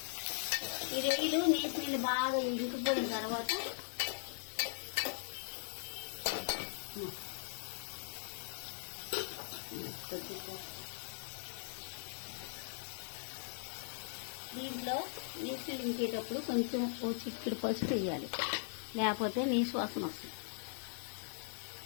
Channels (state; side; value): silent; right; 51 dB below the other